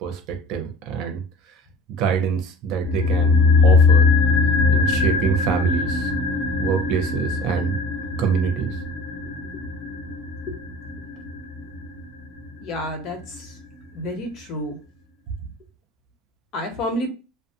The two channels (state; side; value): normal; both; correlation 0.44